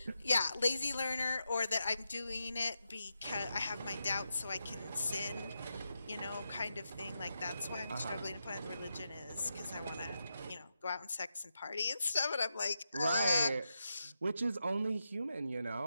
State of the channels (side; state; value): both; inverted; correlation -0.87